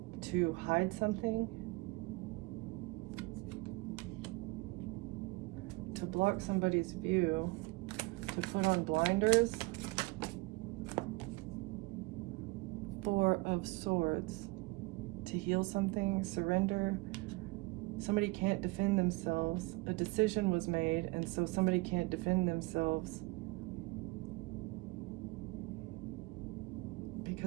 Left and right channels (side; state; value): left; quieter; 24.8 dB